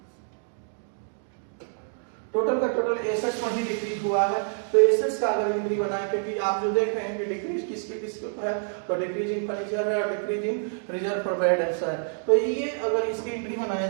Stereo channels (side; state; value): left; silent; digital silence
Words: टोटल का टोटल एसेट्स पर ही डिक्रीज हुआ है, तो एसेट्स का अगर एंट्री बनाए, क्योंकि आप जो देख रहे हैं कि डिक्रीज किसके है, तो डिक्रीज इन फर्नीचर है और decrease in reserve for bad debts है। तो ये अगर इसकी एंट्री बनाया